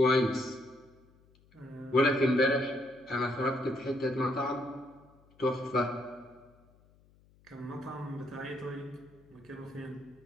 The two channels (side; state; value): left; noise; hum, 29 dB below the sound